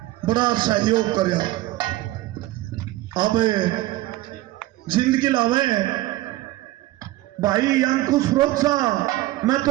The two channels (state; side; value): quieter; left; 17.0 dB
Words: बड़ा सहयोग करया। अब जिंदगी लावे भाई अंकुश रोचा, मैं